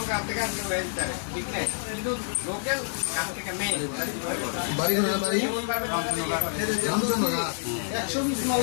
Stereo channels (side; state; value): right; silent; 60 dB below the other